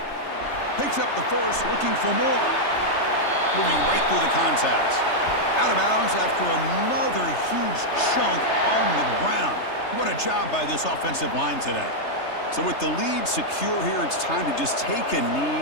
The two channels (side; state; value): right; late; 3.3 ms